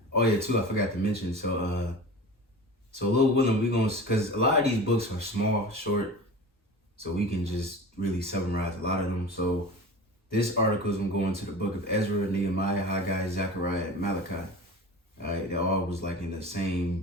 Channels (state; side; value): normal; both; correlation 0.35